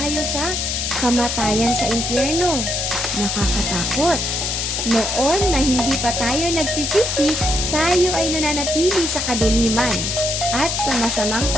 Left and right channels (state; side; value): noise; left; hiss, 1 dB below the sound